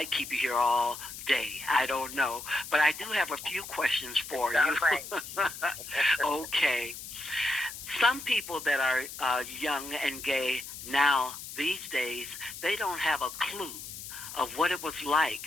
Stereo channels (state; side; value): noise; left; hiss, 11 dB below the sound